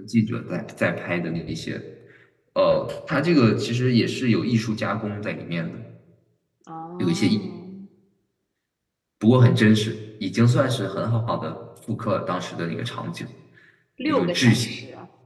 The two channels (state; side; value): identical; both; correlation 1.00